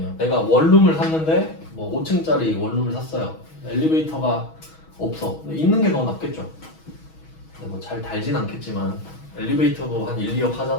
내가 원룸을 샀는데 뭐 5층짜리 원룸을 샀어요. 엘리베이터가 없어. 있는 게 더 낫겠죠. 뭐 잘 달진 않겠지만 엘리베이터도 한 1, 2억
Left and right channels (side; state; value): right; late; 6.3 ms